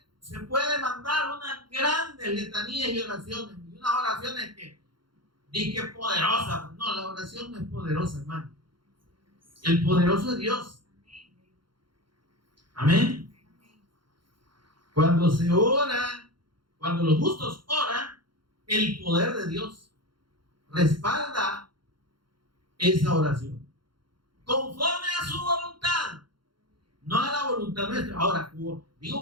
puede mandar unas grandes letanías y oraciones, y unas oraciones que dicen poderosas. No, la oración no es poderosa, hermano. El poderoso es Dios. Amén. Cuando se ora, cuando los justos oran, el poder de Dios respalda esa oración conforme a su voluntad, no a la voluntad nuestra. Ahora,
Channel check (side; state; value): left; late; 0.73 ms